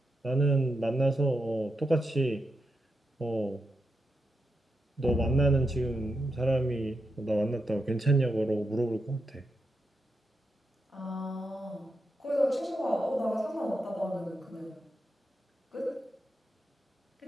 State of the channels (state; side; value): normal; both; correlation 0.86